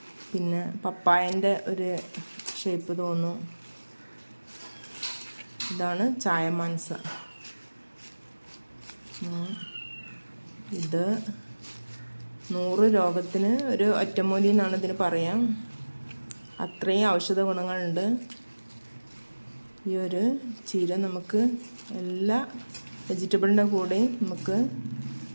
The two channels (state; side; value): inverted; both; correlation -1.00